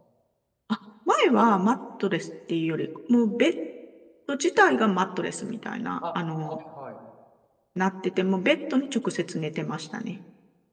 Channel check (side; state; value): both; identical; correlation 1.00